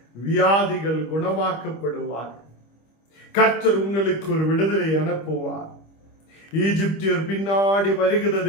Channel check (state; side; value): late; right; 25 ms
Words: வியாதிகள் குணமாக்கப்படுவார்கள். கர்த்தர் உங்களுக்கு ஒரு விடுதலை அனுப்புவார். ஈஜிப்தியர் பின்னாடி